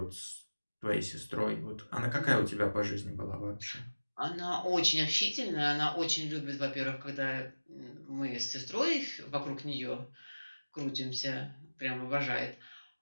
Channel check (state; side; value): inverted; both; correlation -1.00